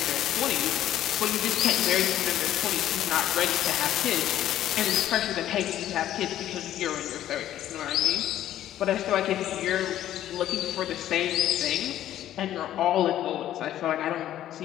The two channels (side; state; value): right; quieter; 12.3 dB